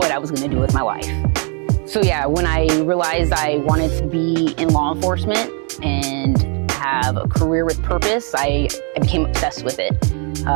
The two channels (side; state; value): left; quieter; 38.0 dB